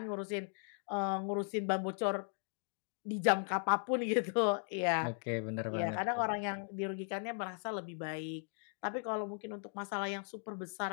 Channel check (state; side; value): silent; right; 53 dB below the other